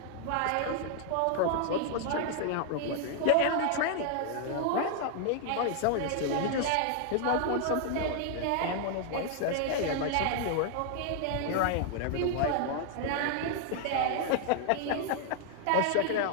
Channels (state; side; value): different; both; correlation 0.00